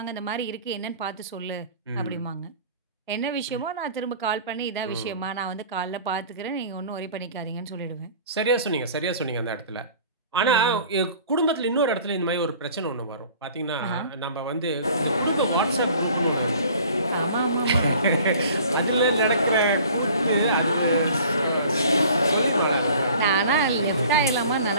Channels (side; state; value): both; inverted; correlation -0.48